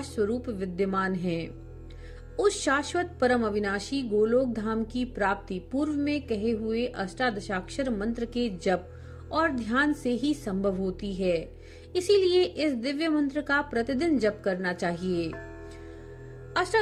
स्वरूप विद्यमान हैं। उस शाश्वत परम अविनाशी गोलोक धाम की प्राप्ति पूर्व में कहे हुए अष्टादशाक्षर मंत्र के जप और ध्यान से ही संभव होती है। इसीलिए इस दिव्य मंत्र का प्रतिदिन जप करना चाहिए।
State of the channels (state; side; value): identical; both; correlation 1.00